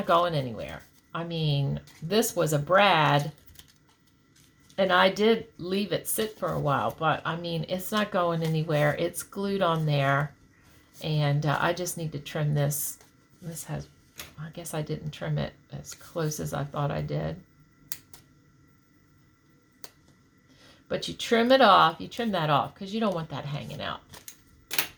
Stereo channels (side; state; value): both; identical; correlation 1.00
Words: going anywhere. I mean, this was a brad, and I did leave it sit for a while, but I mean, it's not going anywhere. It's glued on there, and I just need to trim this. This has, I guess I didn't trim it as close as I thought I did. But you trim it off, you trim that off because you don't want that hanging out.